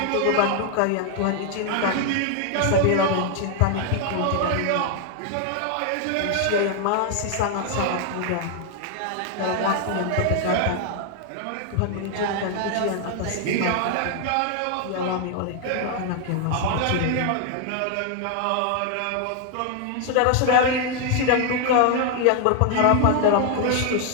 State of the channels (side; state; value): both; different; correlation 0.00